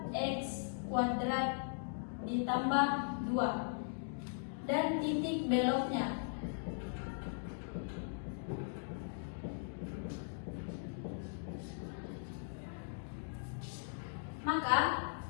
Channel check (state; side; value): silent; right; digital silence